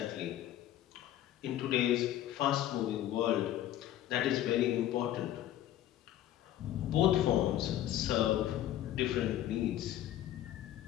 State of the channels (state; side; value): quieter; right; 12.7 dB